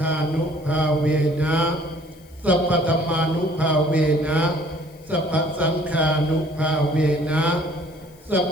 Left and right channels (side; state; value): left; noise; hiss, 28 dB below the sound